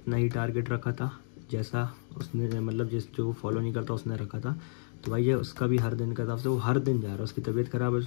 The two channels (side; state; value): right; silent; digital silence